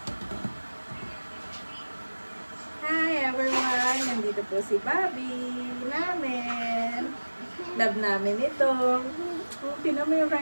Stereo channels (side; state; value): both; inverted; correlation -1.00